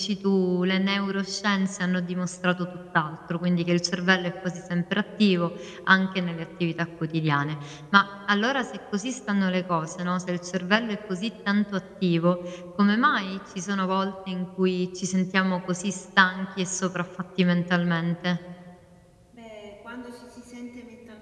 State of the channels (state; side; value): identical; both; correlation 1.00